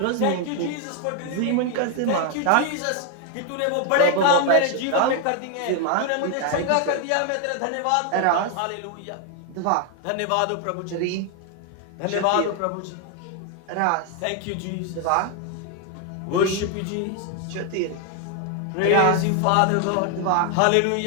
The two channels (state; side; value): different; both; correlation 0.01